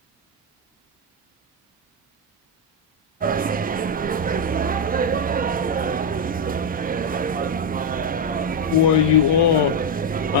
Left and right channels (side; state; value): both; normal; correlation 0.02